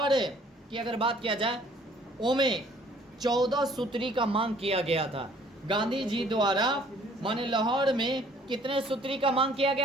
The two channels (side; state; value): both; normal; correlation 0.57